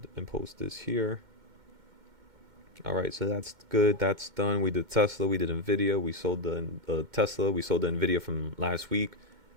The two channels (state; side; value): late; left; 2.1 ms